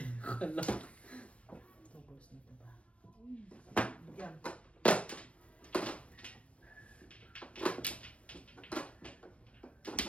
Kala. 2 balls nito ba? Yan.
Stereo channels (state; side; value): late; right; 0.062 ms